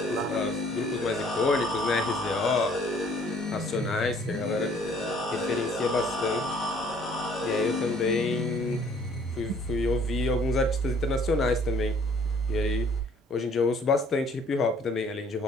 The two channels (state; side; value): normal; both; correlation 0.58